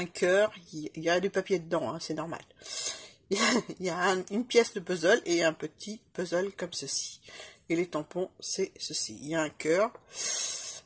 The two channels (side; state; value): both; identical; correlation 1.00